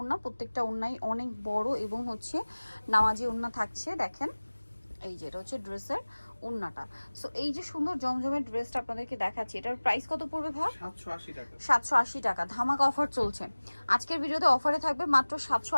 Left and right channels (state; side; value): inverted; both; correlation -1.00